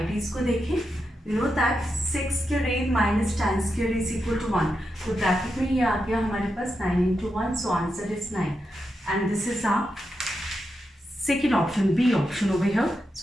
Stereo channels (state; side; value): normal; both; correlation 0.86